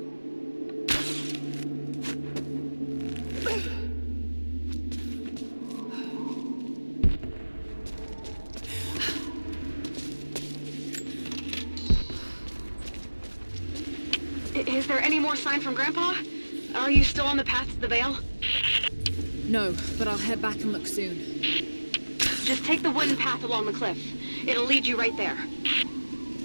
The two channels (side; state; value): both; inverted; correlation -1.00